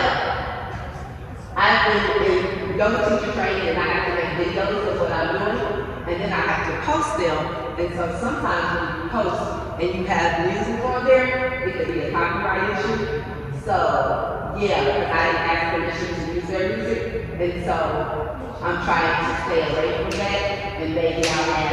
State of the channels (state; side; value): identical; both; correlation 1.00